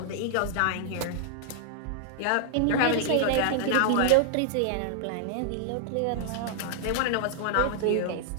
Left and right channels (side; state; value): both; different; correlation -0.01